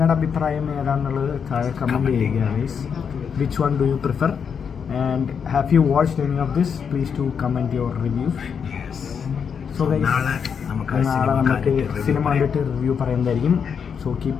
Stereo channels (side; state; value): right; quieter; 6.8 dB